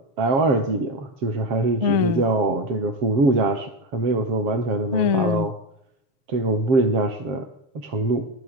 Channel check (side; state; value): left; late; 7.1 ms